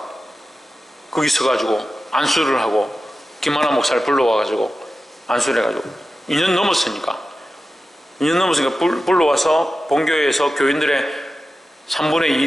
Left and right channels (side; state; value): both; normal; correlation 0.93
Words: 거기 서가지고 안수를 하고, 김하나 목사를 불러와가지고 안수를 해가지고 2년 넘었으니까 불러와서 본교회에서 교인들의 3분의